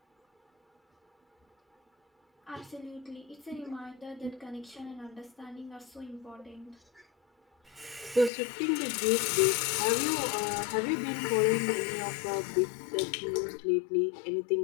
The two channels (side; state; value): right; drops out; at 8.3 s